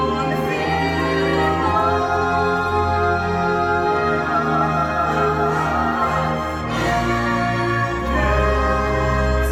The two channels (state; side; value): identical; both; correlation 1.00